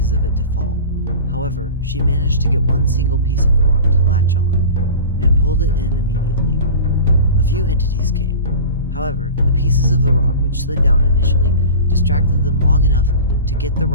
of it to fall. However, she managed to get one single piece of the rock to latch on, and pulled it in immediately. A few entities came. However, the pieces of the rock which slid down initially distracted them long enough to get the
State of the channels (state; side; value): inverted; both; correlation -0.35